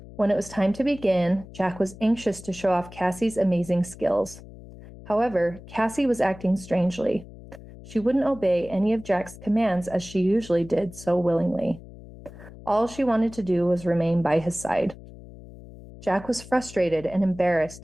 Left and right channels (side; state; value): left; noise; hum, 17 dB below the sound